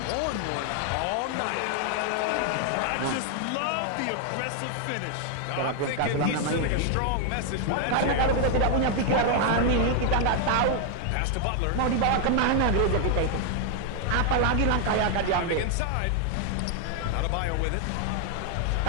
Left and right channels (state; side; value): different; both; correlation 0.00